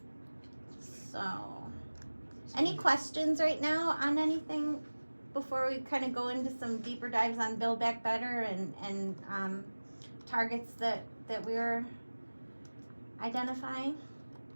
So, any questions right now on anything before we kind of go into some deeper dives on Build Back Better and targets that we're identifying?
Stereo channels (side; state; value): both; inverted; correlation -1.00